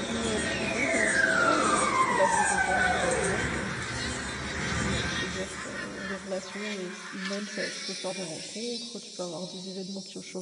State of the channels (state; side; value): identical; both; correlation 1.00